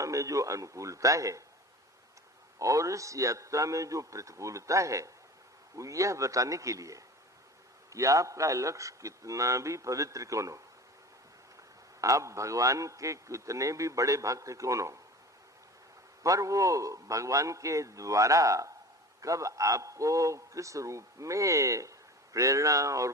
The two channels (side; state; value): both; normal; correlation 0.37